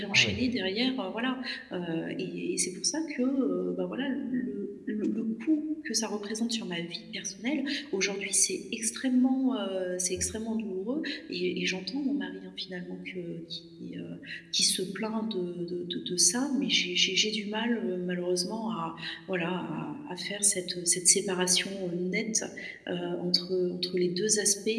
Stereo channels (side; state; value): both; identical; correlation 1.00